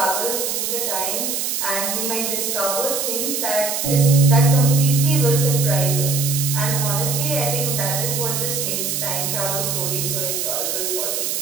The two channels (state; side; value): noise; right; hiss, 1 dB below the sound